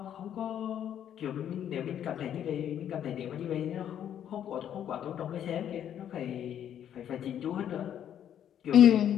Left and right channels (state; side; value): quieter; right; 9.9 dB